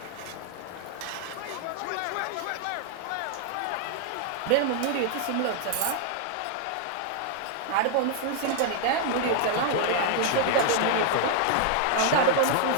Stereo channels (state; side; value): different; both; correlation 0.00